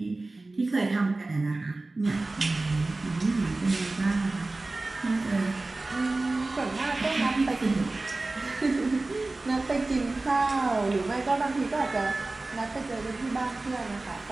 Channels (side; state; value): left; quieter; 3.1 dB